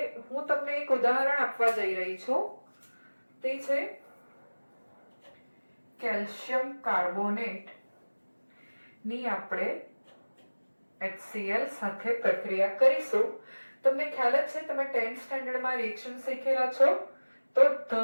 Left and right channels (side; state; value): both; inverted; correlation -1.00